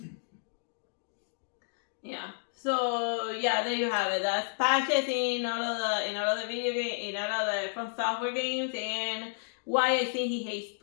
Yeah. So yeah, there you have it. That's patches in all of the video game, in all of the From Software games, and why I think he hates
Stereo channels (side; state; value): right; silent; digital silence